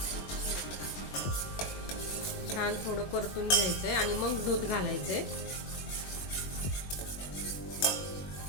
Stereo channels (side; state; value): right; late; 21 ms